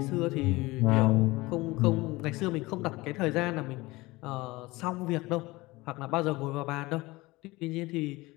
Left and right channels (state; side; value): quieter; right; 21.1 dB